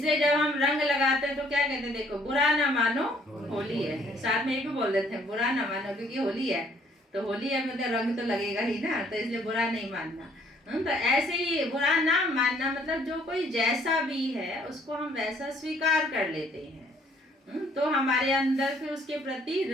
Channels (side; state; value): both; normal; correlation 0.62